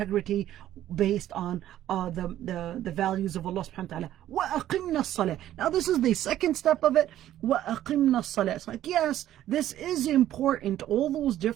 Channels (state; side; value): quieter; left; 12.6 dB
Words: based on the values of Allah subhanahu wa ta'ala. وَأَقِمْنَا الصَّلَاةِ. Now this is the second step of it. وَأَقِمْنَا الصَّلَاةِ. It's like, yes, this is important. All those